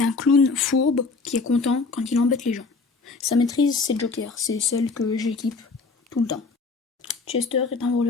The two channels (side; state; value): right; quieter; 4.2 dB